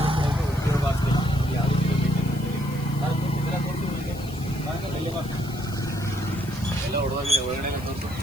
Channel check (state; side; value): noise; left; hiss, 19 dB below the sound